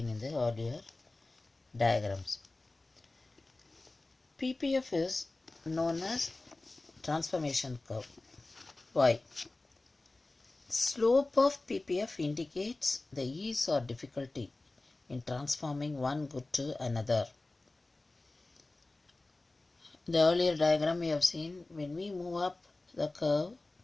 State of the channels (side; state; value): right; quieter; 3.1 dB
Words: in the earlier diagrams. PPF is known as transformation curve. Why? Slope of PPF indicates the ease or difficulty in transforming one good to another. The earlier diagram we have seen, when we move up the curve,